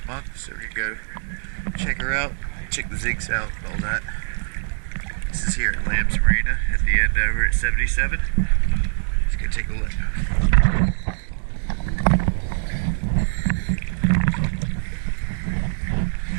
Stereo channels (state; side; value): silent; left; digital silence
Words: month, so we're going to go check her out, check the zigs out, all that. This is here at Lamb's Marina at the end over at 77. Let's go take a look.